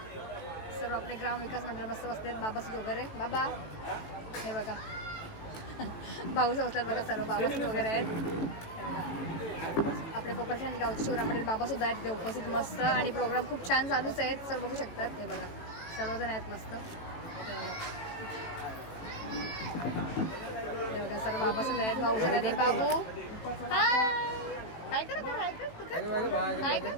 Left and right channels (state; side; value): late; right; 18 ms